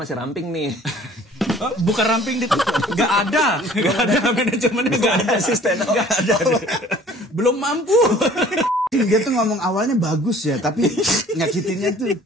ramping nih. Bukan ramping itu. Gak ada manajemennya. Gak ada asisten. Gak ada. Belum mampu. Dia tuh ngomong awalnya bagus ya, tapi nyakitinnya tuh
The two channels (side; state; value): both; normal; correlation 0.52